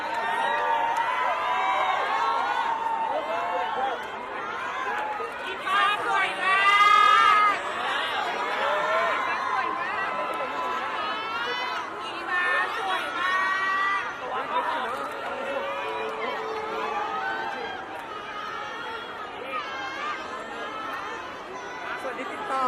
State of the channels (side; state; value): both; identical; correlation 1.00